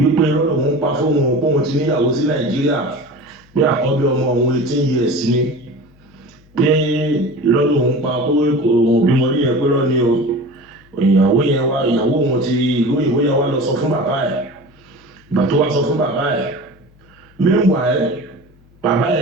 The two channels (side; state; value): left; noise; hum, 29 dB below the sound